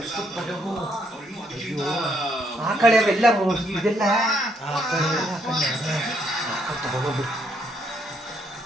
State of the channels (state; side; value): normal; both; correlation 0.73